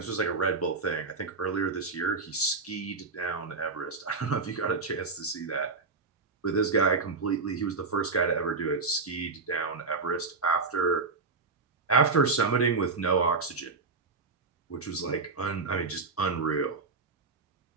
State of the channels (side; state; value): left; quieter; 4.2 dB